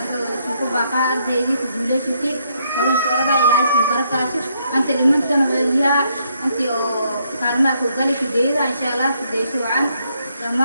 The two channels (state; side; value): inverted; both; correlation -0.74